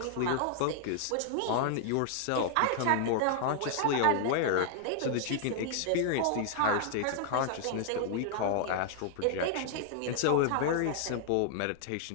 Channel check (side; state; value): both; different; correlation -0.01